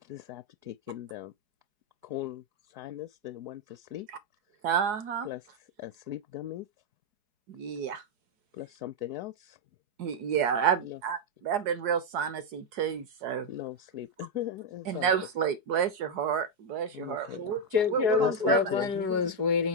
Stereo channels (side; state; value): left; late; 4.7 ms